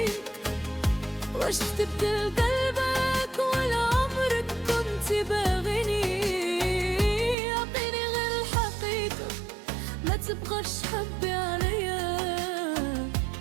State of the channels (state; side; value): drops out; left; at 7.4 s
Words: واش تبدل قلبك ولا عمرك كنت باغيني؟ عطيني غير الحقيقة، ما تبغاش تحبي عليا،